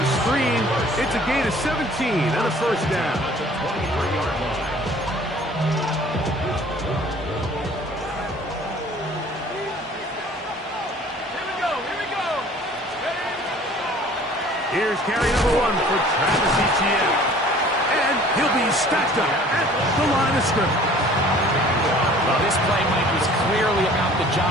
screen. It's a gain of 17 and a 1st down. 23-yard line. Here's carry number 1 for Travis Etienne. And he'll be stacked up at the line of scrimmage. Well, this play, Mike, was clearly about the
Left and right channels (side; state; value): both; normal; correlation 0.51